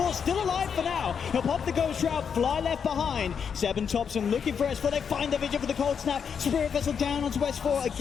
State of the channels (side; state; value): right; quieter; 6.9 dB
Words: still alive for now. He'll pop the ghost route. Fly left behind. Seb and Thompson looking for S4. They find the vision for the cold snap. Spirit Vessel down onto S4